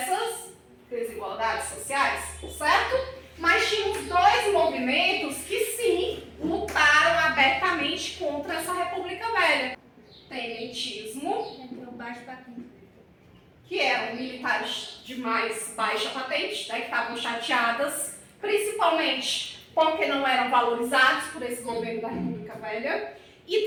desigualdades sociais, certo? Mas tínhamos dois movimentos que sim, lutaram abertamente contra essa República Velha. Tenentismo, que eram militares de mais baixa patente, né, que estavam chateadas, principalmente porque não eram valorizados por esse governo da República Velha. E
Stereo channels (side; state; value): both; identical; correlation 1.00